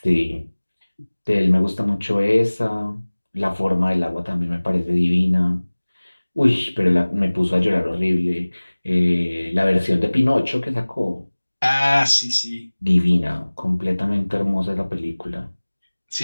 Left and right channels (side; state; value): both; inverted; correlation -1.00